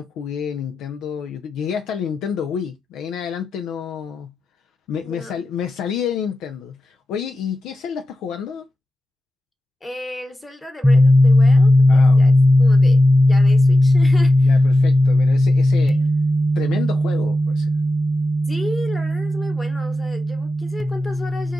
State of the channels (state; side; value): normal; both; correlation 0.92